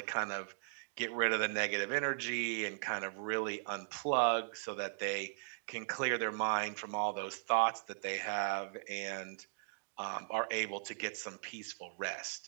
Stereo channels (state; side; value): silent; left; digital silence